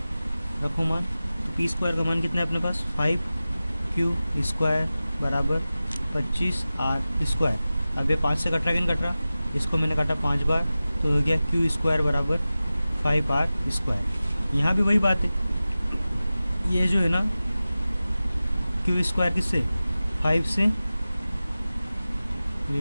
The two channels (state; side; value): inverted; both; correlation -0.96